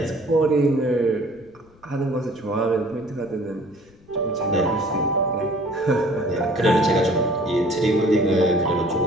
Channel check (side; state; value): left; noise; rumble, 28 dB below the sound